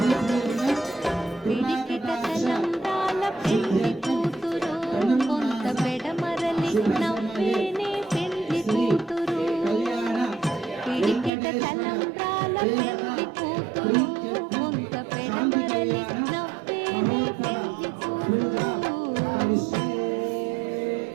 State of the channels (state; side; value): drops out; left; at 11.3 s